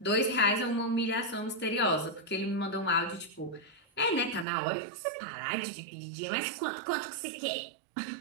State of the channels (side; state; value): left; drops out; at 4.5 s